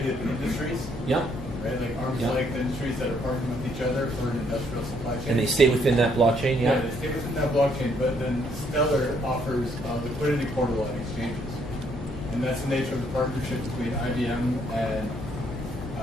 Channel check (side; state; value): left; noise; hum, 12 dB below the sound